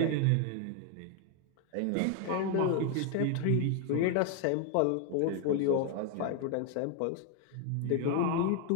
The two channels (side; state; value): both; different; correlation 0.01